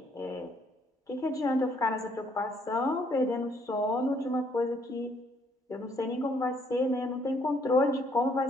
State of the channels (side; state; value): both; normal; correlation 0.67